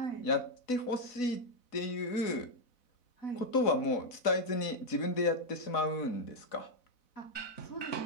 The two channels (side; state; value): right; late; 4.0 ms